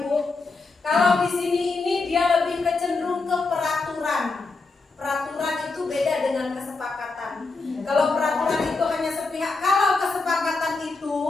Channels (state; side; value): quieter; right; 3.9 dB